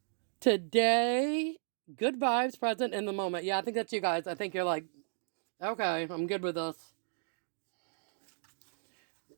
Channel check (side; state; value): left; silent; digital silence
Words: Today, good vibes, present in the moment. Yeah, I think that's you guys. I think you're like, okay, I'm good with this.